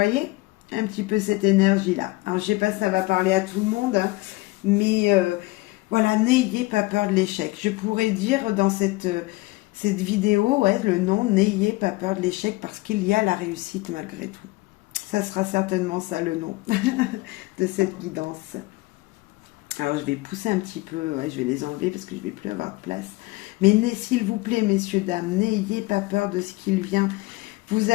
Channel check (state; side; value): quieter; right; 22.0 dB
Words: un petit peu cette énergie-là. Alors, je sais pas si ça va parler à tout le monde, hein, mais voilà, n'ayez pas peur de l'échec. Je pourrais dire dans cette vidéo, ouais, le nom, n'ayez pas peur de l'échec parce qu'il y a la réussite malgré tout. Ça sera certainement ça le nom de cette guidance. Alors, je vais pousser un petit peu, ouais, je vais les enlever parce que je ne vais plus avoir de place. Mais s'il vous plaît, messieurs, dames, n'ayez pas peur de ce qu'il vient. Vous